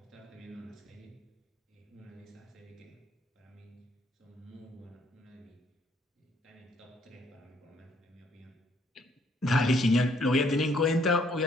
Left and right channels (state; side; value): normal; both; correlation 0.67